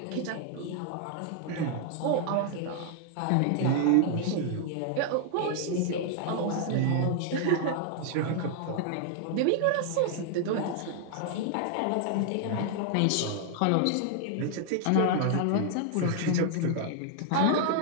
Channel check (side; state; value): both; different; correlation 0.00